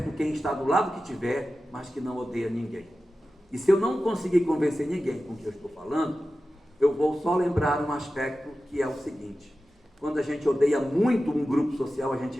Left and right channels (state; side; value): normal; both; correlation 0.94